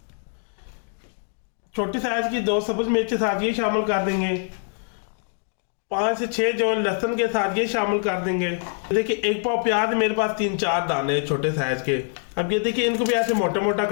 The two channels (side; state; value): right; silent; 62 dB below the other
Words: छोटी साइज की 2 सब्ज मिर्च साथ ये शामिल कर देंगे। 5 से 6 जो लहसुन के साथ ये शामिल कर देंगे। देखिए 1 पाव प्याज मेरे पास 3-4 दाने छोटे साइज के। अब ये देखिए इनको भी ऐसे मोटा मोटा